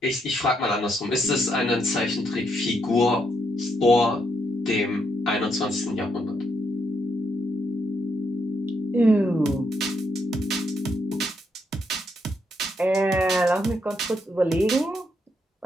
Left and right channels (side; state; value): both; normal; correlation 0.77